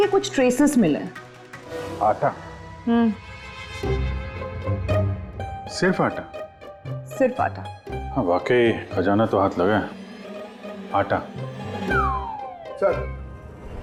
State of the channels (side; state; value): both; identical; correlation 1.00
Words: कुछ ट्रेसेस मिले। आटा? सिर्फ आटा? सिर्फ आटा। हाँ वाकई खजाना तो हाथ लगा है। आटा।